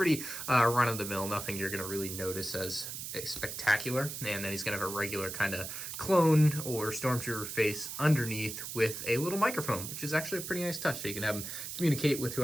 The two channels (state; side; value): noise; right; hiss, 7 dB below the sound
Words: run-of-the-mill, nothing you're going to really notice as spectacular. And then he's going to have a regular kind of clone or stormtrooper face underneath with a little microphone, which is actually a pretty nice touch. So you can have him communicate with